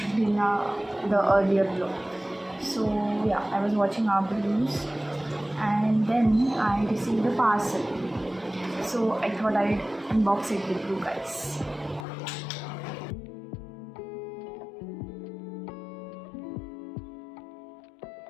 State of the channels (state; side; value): drops out; right; at 12.1 s